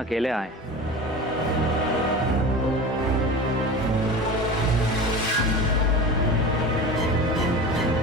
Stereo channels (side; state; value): both; normal; correlation 0.32